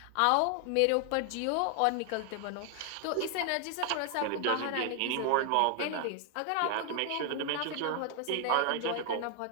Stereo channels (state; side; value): different; both; correlation 0.00